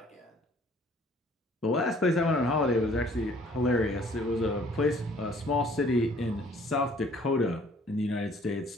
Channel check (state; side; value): normal; both; correlation 0.57